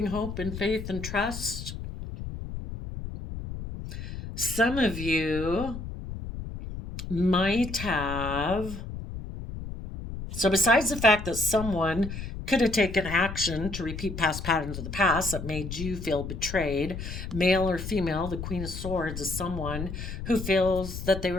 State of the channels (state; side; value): noise; left; rumble, 8 dB below the sound